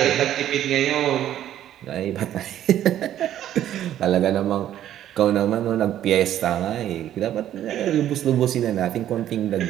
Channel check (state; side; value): quieter; left; 11.6 dB